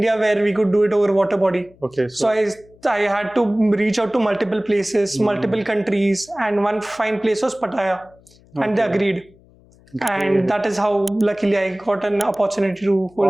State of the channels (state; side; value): noise; left; hum, 28 dB below the sound